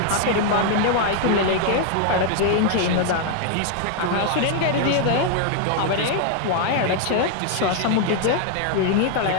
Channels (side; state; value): both; different; correlation 0.00